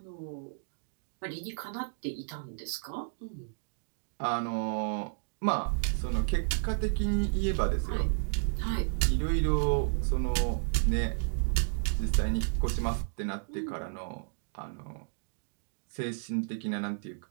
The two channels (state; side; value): silent; left; digital silence